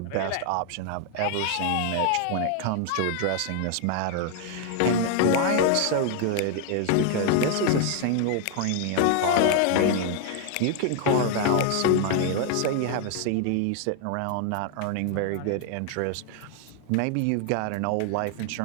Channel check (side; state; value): both; different; correlation 0.00